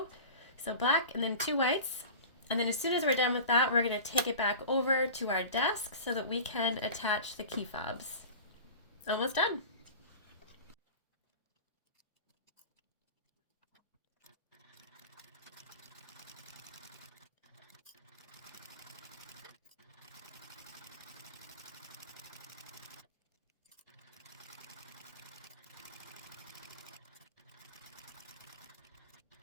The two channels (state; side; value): inverted; both; correlation -0.36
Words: So black and then 2 whites, And then as soon as we're done with that, we're going to take it back over to our desk so that we can attach the key fobs. Almost done.